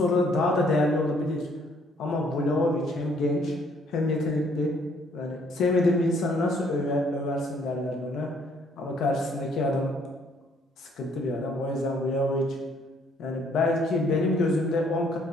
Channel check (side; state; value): both; normal; correlation 0.65